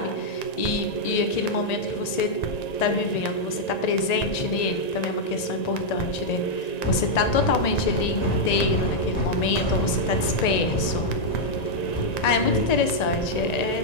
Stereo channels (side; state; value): right; late; 1.9 ms